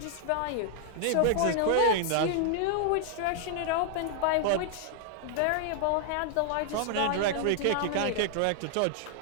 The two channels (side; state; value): both; different; correlation 0.00